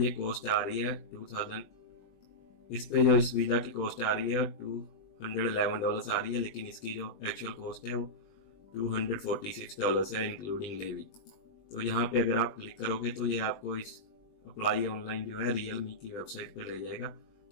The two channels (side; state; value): right; late; 20 ms